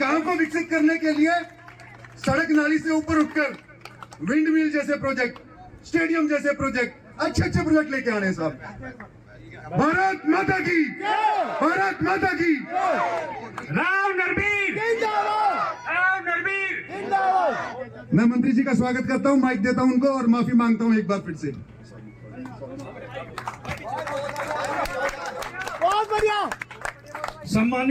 को विकसित करने के लिए सड़क नाली से ऊपर उठकर विंड मिल जैसे प्रोजेक्ट, स्टेडियम जैसे प्रोजेक्ट, अच्छे अच्छे प्रोजेक्ट लेके आने साहब। भारत माता की, भारत माता की। राव नरबीर, राव नरबीर। मैं मंत्री जी का स्वागत करता हूं, माइक देता हूं उनको और माफी मांगता हूं एक बार फिर से। बहुत बढ़िया।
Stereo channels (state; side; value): identical; both; correlation 1.00